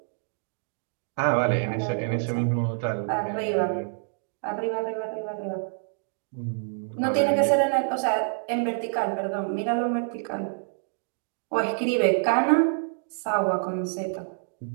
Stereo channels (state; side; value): silent; left; digital silence